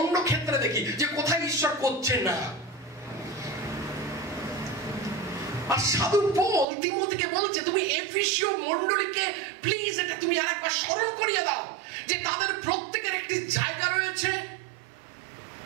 ক্ষেত্রে দেখি যে কোথায় ঈশ্বর করছে না। আর সাধু পৌল তিমোথীকে বলছে, তুমি এফেসীয় মণ্ডলীকে প্লিজ এটা তুমি আরেকবার স্মরণ করিয়ে দাও যে তাদের প্রত্যেকের একটি জায়গা রয়েছে।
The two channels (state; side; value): drops out; left; at 6.7 s